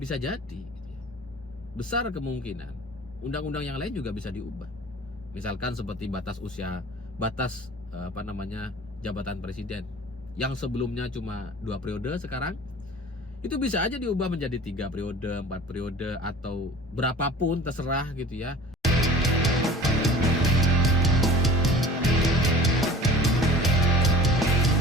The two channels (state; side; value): normal; both; correlation 0.44